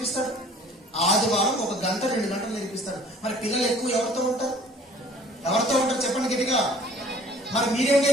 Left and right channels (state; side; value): normal; both; correlation 0.52